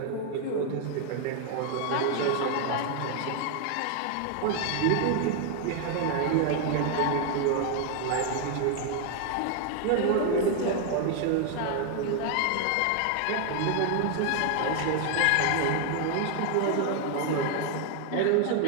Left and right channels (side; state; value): both; different; correlation 0.00